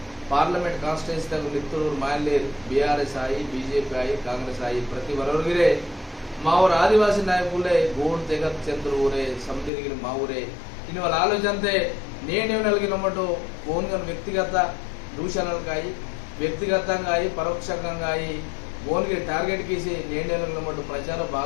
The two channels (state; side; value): drops out; right; at 9.7 s